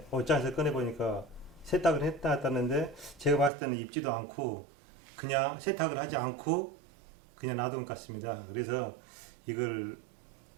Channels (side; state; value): left; drops out; at 3.5 s